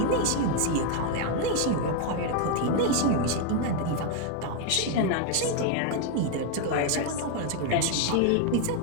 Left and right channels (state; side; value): different; both; correlation 0.01